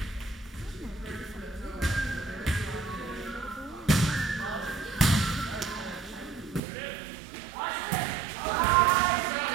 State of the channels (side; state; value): left; drops out; at 6.6 s